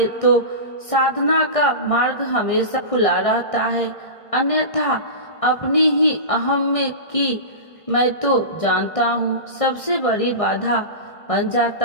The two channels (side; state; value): right; late; 1.6 ms